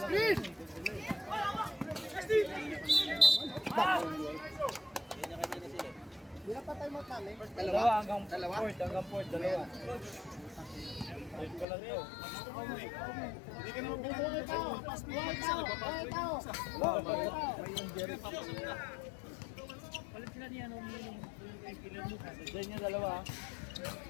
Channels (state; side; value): drops out; right; at 11.7 s